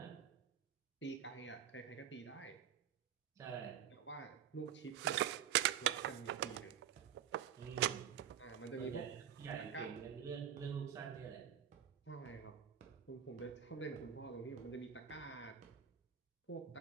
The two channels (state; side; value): quieter; left; 9.7 dB